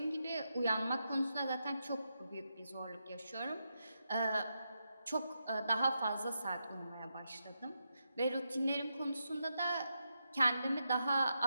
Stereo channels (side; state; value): both; inverted; correlation -0.85